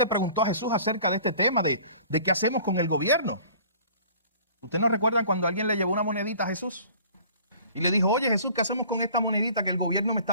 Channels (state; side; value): inverted; both; correlation -0.49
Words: preguntó a Jesús acerca de este tema de qué hacemos con el gobierno. ¿Ustedes no recuerdan cuando alguien le llevó una monedita a Jesús? Y le dijo, oye Jesús, ¿qué hacemos con esta monedita que el gobierno me